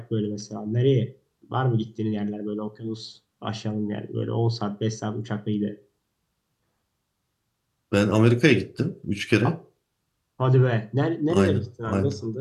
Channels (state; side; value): identical; both; correlation 1.00